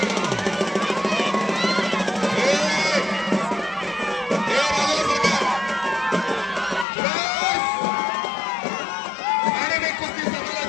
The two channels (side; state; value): right; drops out; at 6.9 s